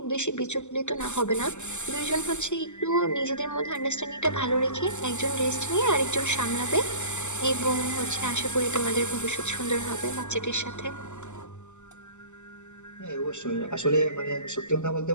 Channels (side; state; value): right; late; 0.84 ms